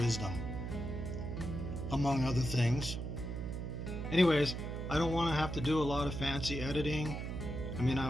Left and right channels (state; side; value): noise; right; hum, 4 dB below the sound